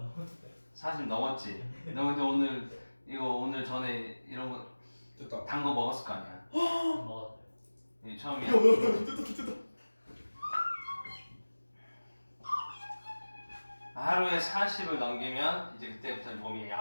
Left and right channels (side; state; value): both; inverted; correlation -1.00